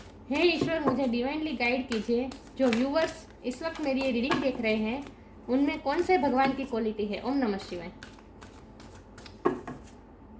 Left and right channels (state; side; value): identical; both; correlation 1.00